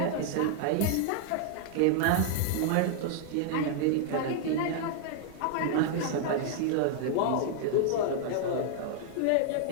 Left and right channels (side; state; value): both; different; correlation 0.00